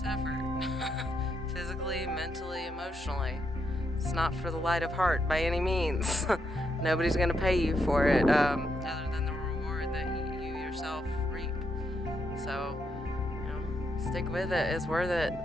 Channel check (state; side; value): normal; both; correlation 0.79